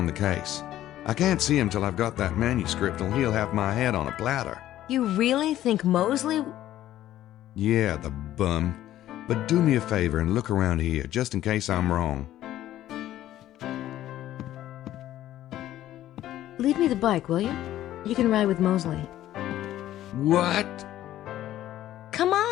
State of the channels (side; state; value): right; quieter; 13.3 dB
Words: the case. I can't see him till I've got that manuscript, or he'll have my head on a platter. You really think Mosley... Yeah, the bum. But do me a favor and look around here, just in case I'm wrong. Leave me the bike, will you? You can ride with Mosley. What? Come